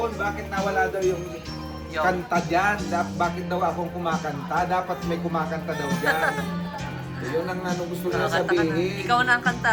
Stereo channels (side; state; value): both; identical; correlation 1.00